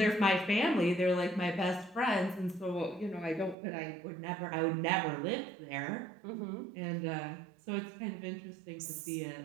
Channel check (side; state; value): left; drops out; at 3.6 s